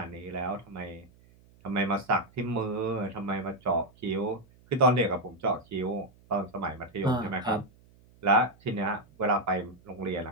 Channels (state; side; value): noise; right; hum, 28 dB below the sound